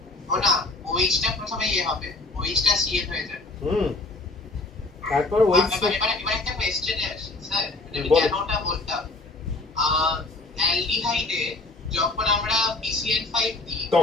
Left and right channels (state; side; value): quieter; right; 3.1 dB